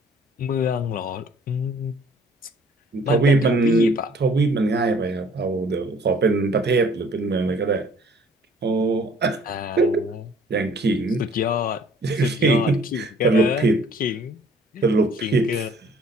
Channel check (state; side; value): normal; both; correlation 0.57